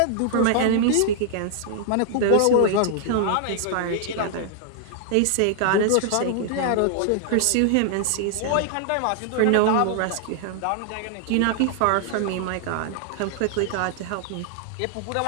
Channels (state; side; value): different; both; correlation -0.01